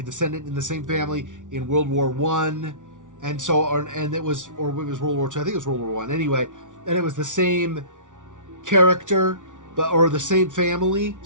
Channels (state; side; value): late; left; 0.87 ms